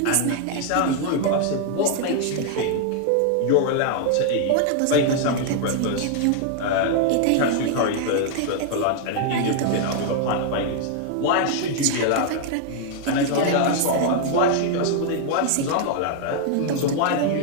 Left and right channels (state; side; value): different; both; correlation 0.00